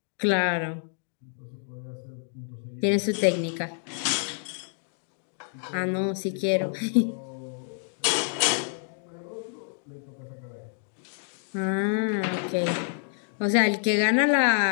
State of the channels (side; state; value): right; silent; 59 dB below the other